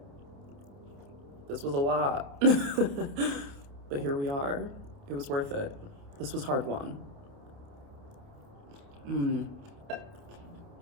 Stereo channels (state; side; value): late; left; 29 ms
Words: This was a lot, but here we are. It was worth it. This was hard won.